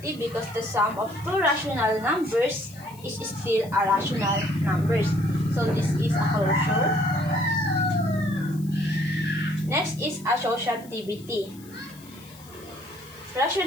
because the sum of two rational numbers is still a rational numbers. So this is a closure. Next is associativity.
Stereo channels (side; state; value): left; noise; hiss, 22 dB below the sound